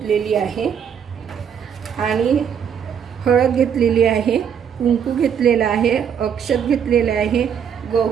आहे आणि हळद घेतलेली आहे, कुंकू घेतलेला आहे, अक्षत घेतलेले आहे,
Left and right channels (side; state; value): left; quieter; 7.9 dB